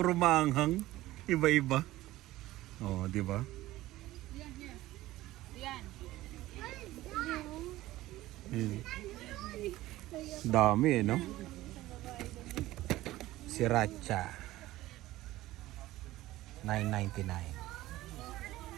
maanghang. Iba-iba. Oh, di ba? Dami eh, no? Sriracha. $9.99.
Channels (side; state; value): left; quieter; 16.5 dB